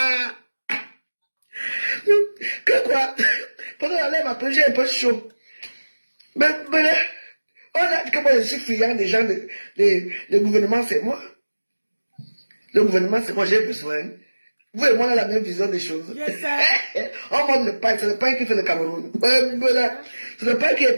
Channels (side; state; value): both; inverted; correlation -1.00